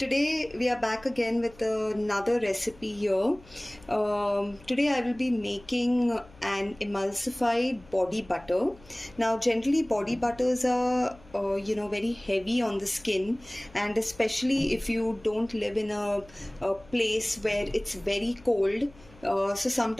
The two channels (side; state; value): left; noise; hum, 24 dB below the sound